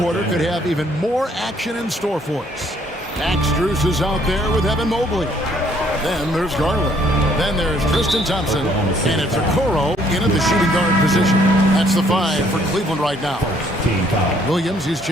could have even more action in store for us. Max Strus is out there with Evan Mobley. Then there's Garland. Then there's Tristan Thompson. And it's Okoro in at the shooting guard position. That's the 5 for Cleveland right now. Williams, he's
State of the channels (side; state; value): both; normal; correlation 0.65